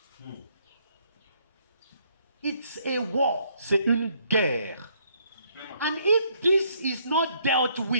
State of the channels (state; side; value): inverted; both; correlation -0.69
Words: It's a war. C'est une guerre. And if this is not dealt